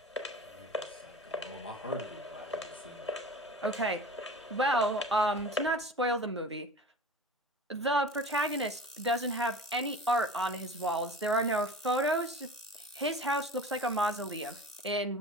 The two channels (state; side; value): normal; both; correlation 0.38